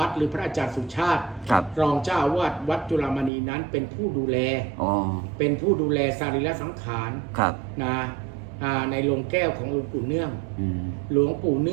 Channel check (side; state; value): left; drops out; at 3.3 s